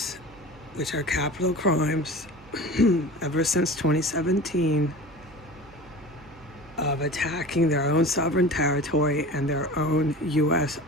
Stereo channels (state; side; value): noise; right; hum, 24 dB below the sound